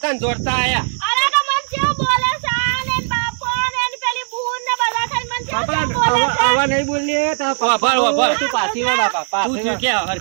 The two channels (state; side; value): silent; left; digital silence